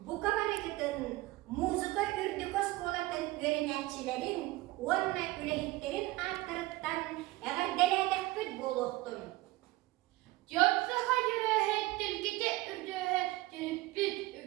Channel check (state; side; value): quieter; left; 18.9 dB